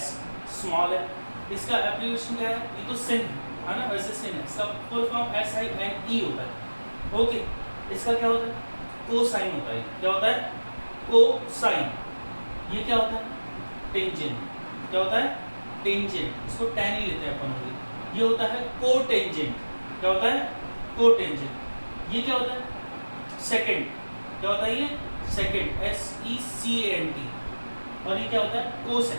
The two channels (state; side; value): inverted; both; correlation -1.00